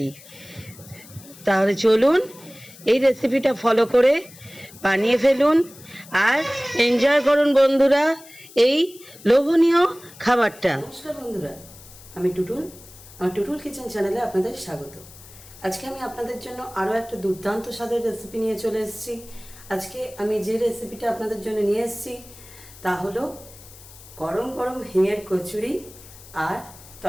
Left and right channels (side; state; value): left; noise; hiss, 20 dB below the sound